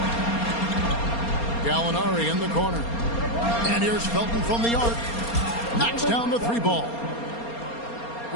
Gallinari in the corner. And here's Felton from the arc. Knocks down the three ball.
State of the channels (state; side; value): late; right; 4.3 ms